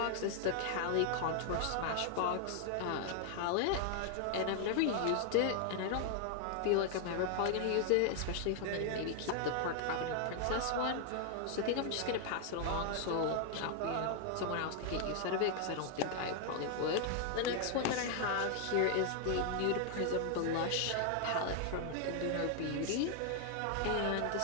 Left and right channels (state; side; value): different; both; correlation 0.00